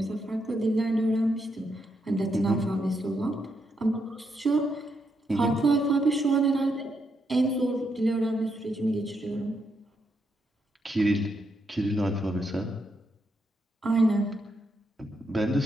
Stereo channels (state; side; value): normal; both; correlation 0.80